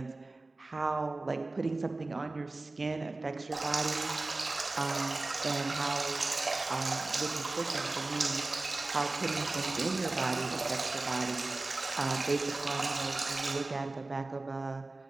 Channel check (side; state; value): left; quieter; 3.2 dB